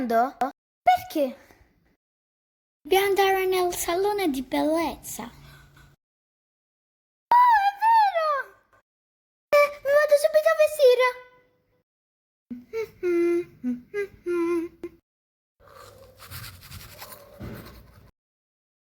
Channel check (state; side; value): identical; both; correlation 1.00